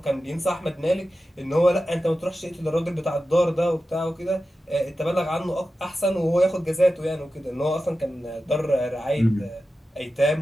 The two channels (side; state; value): both; normal; correlation 0.93